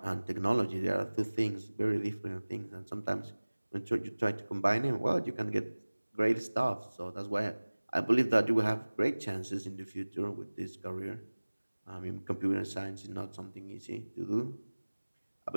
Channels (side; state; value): both; inverted; correlation -1.00